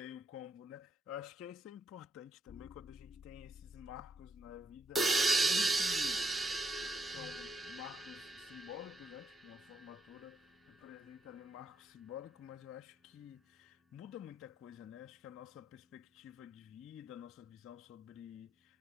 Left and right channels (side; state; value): both; normal; correlation 0.80